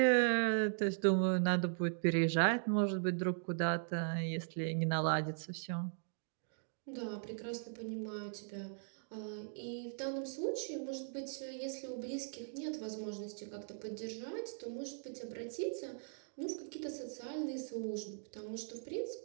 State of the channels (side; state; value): left; silent; digital silence